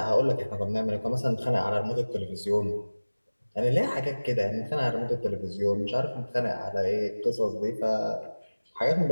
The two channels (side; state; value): both; inverted; correlation -1.00